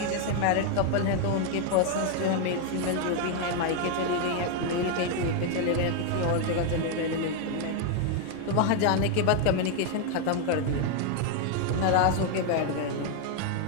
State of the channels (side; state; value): both; different; correlation 0.01